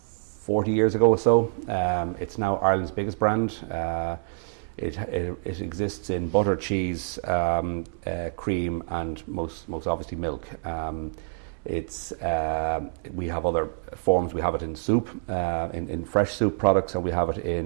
years ago or so. It's now Ireland's biggest brand. It exists in butter, cheese, cream, and most obviously milk. We have other forms. We have it in soup, in fresh soup products, and we have it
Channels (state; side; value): silent; left; digital silence